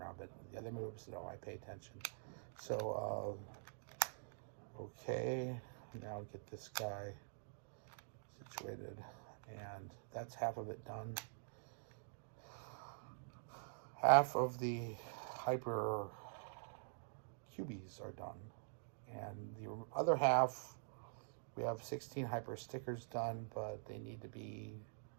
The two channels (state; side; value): silent; left; digital silence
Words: but the other moves, no, I pay attention. So, okay, now get this guy situated, and that's half of it done. Half of the hyper cubies are done, and the other half, we have 16 hyper stickers done, but they need to be